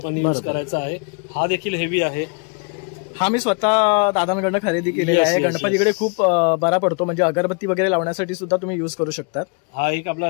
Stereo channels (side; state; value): right; quieter; 34.6 dB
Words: यूज करायचा आहे. हा देखील हेवी आहे. हा मी स्वतः दादांकडनं खरेदी केलेला आहे. गणपतीकडे खूप बरा पडतो, म्हणजे अगरबत्ती वगैरे लावण्यासाठी सुद्धा तुम्ही युज करू शकता. हा एक आपला